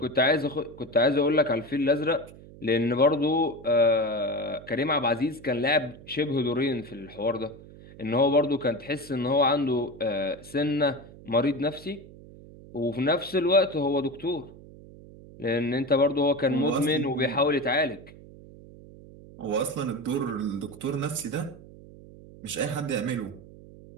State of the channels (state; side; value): noise; right; hum, 19 dB below the sound